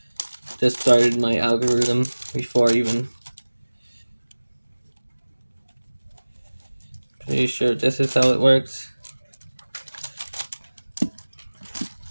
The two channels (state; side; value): inverted; both; correlation -1.00